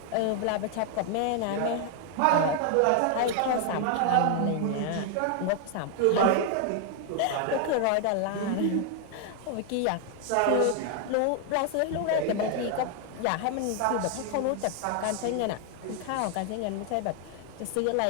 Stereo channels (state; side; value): different; both; correlation 0.00